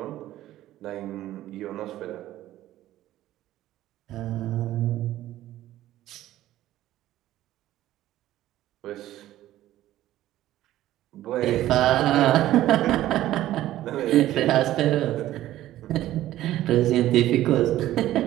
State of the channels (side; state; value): left; quieter; 14.2 dB